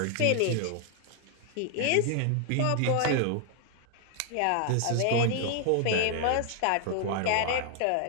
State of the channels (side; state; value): both; different; correlation 0.00